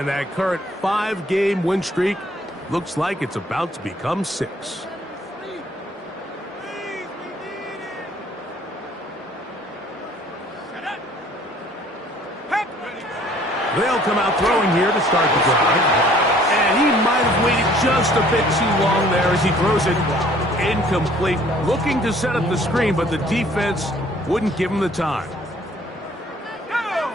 that current 5-game win streak looks like it's about to become 6. They'll come out throwing here to start the drive. And he might have waited just a bit too long there as he throws it incomplete. Looking to set up the screen, but the defense wouldn't give him the time.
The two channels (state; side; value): normal; both; correlation 0.57